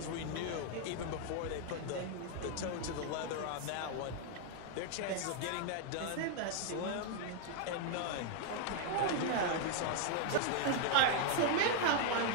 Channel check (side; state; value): both; different; correlation 0.00